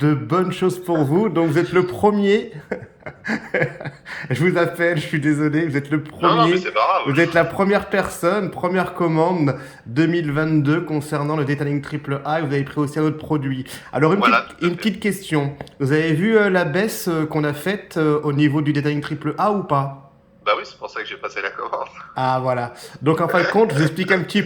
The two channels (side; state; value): both; identical; correlation 1.00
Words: bonnes choses pour vous. Donc vous êtes le premier, je vous appelle, je suis désolé, vous êtes le Non, non, mais premier, c'est pas grave. vous êtes la première personne, première commande 2022 concernant le Detailing Triple A et vous avez pris aussi un autre produit. Alors Voilà, tout à une fait. petite question, vous avez vu la baisse qu'on a faite au niveau du Detailing Triple A ou pas? Bah oui, c'est pour ça que j'ai passé la commande. Ah voilà. Donc en fin de compte, je vous explique un petit